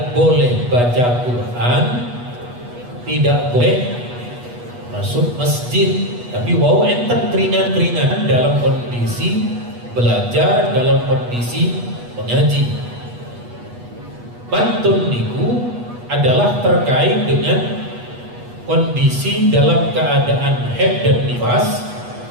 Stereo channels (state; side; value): late; left; 8.3 ms